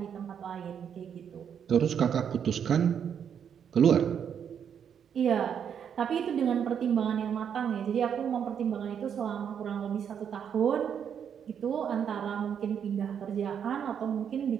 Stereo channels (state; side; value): quieter; left; 8.1 dB